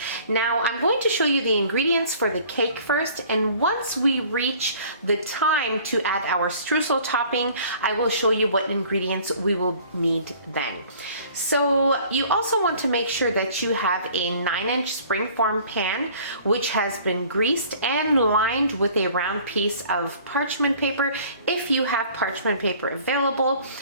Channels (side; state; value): both; inverted; correlation -0.51